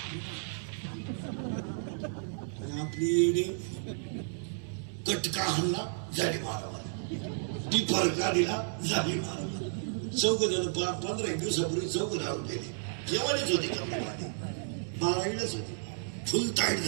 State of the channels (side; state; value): left; silent; digital silence